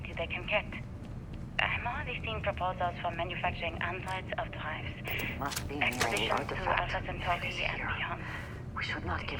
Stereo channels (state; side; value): identical; both; correlation 1.00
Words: they can get. I'm already seeing proposals for manufacturing androids of drives. Must be near the Expeditions to artifact. Alpha Centauri It is and here. beyond. We should not